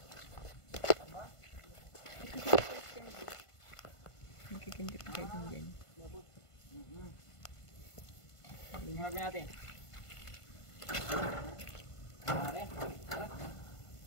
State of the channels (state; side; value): late; right; 1.5 ms